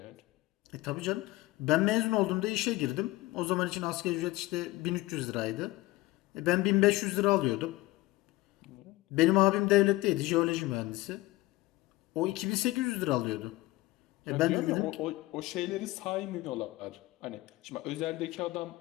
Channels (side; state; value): right; quieter; 19.1 dB